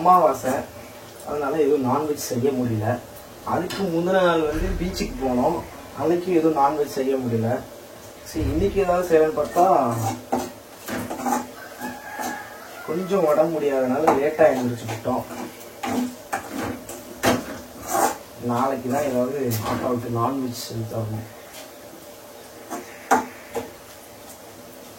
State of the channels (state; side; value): identical; both; correlation 1.00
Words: அதனால எதுவும் நான்வெஜ் செய்ய முடியல. அதுக்கு முந்தின நாள் வந்து பீச்சுக்கு போனோம், அன்னைக்கு எதுவும் நான்வெஜ் செய்ய முடியல. சரி இன்னைக்கு ஏதாவது செய்யணும்னு பார்த்தா கொஞ்சம் உடம்பு முடியாதனால லேட்டாக எழுந்திரிச்சுக்கிட்டோம். நாளைக்கு தான் ஏதாவது அப்பாவுக்கு நான்வெஜ் செஞ்சு தரணும்.